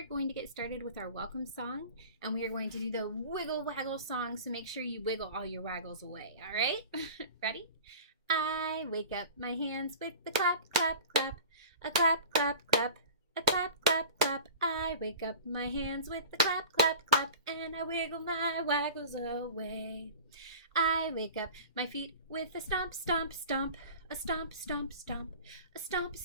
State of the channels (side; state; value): both; inverted; correlation -0.38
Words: going to get started with our welcome song, and we are going to do the wiggle waggle song. So make sure you wiggle all your waggles away. All right? Ready? I wake up my hands with the clap, clap, clap, a clap, clap, clap. A clap, clap, clap, I wake up my hands with the clap, clap, clap, and I wiggle my waggles away. I wake up my feet with a stomp, stomp, stomp, a stomp, stomp, stomp, a stomp,